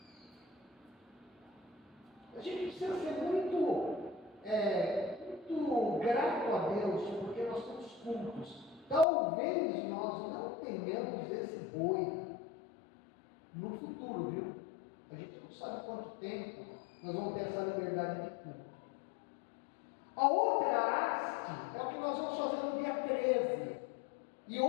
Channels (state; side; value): drops out; right; at 9.1 s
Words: A gente precisa ser muito grato a Deus, porque nós temos cultos. Talvez nós não tenhamos esse boi no futuro, viu? A gente não sabe quanto tempo nós vamos ter essa liberdade de culto. A outra haste é o que nós vamos fazer no dia 13. E